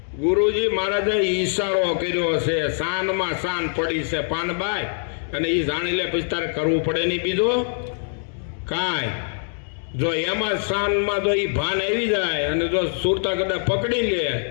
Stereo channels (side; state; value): right; silent; 63 dB below the other